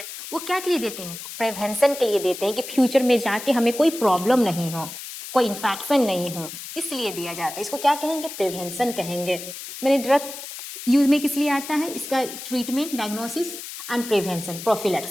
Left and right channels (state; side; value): noise; left; hiss, 10 dB below the sound